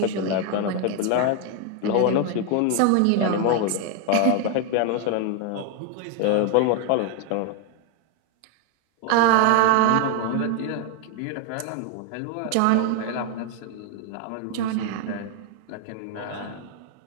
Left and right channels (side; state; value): both; different; correlation 0.01